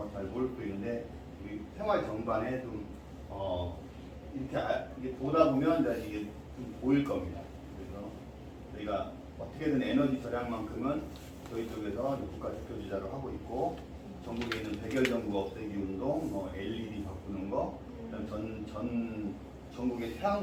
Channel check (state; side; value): identical; both; correlation 1.00